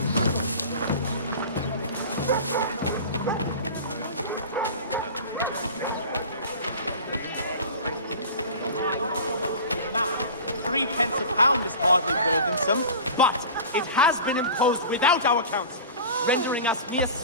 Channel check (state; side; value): inverted; both; correlation -0.35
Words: £3 a pound is hardly burdensome, but it has been imposed without our counsel, rendering us mere